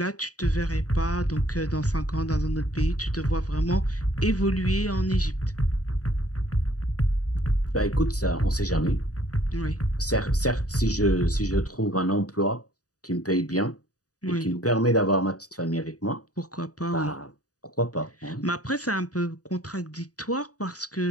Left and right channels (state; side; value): late; right; 0.67 ms